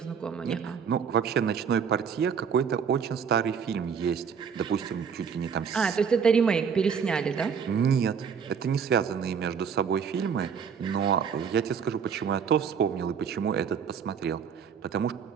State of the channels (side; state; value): left; quieter; 6.8 dB